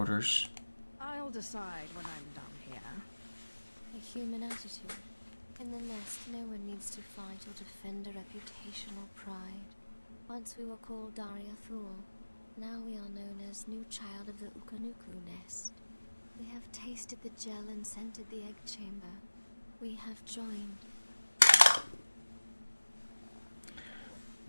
I'll decide when I'm done here. A human attitude. In the nest, no one needs to fight or defend a reputation or pride. Once we were called Daria Thul. Now we are known as new child of the Ukanuku nest. We have tasted the gel and scented the egg chamber. We have joined.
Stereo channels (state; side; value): inverted; both; correlation -1.00